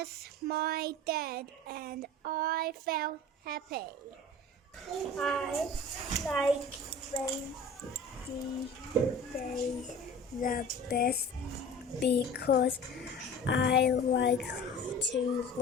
my dad and I felt happy. I like rainy days the best because I like to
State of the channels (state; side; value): normal; both; correlation 0.39